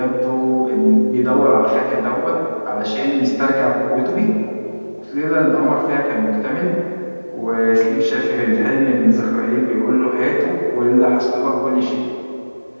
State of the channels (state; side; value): inverted; both; correlation -1.00